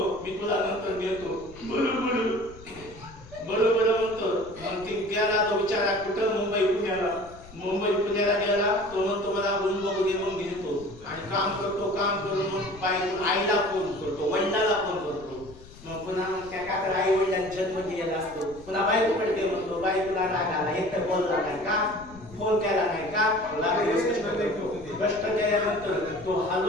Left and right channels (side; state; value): left; noise; rumble, 20 dB below the sound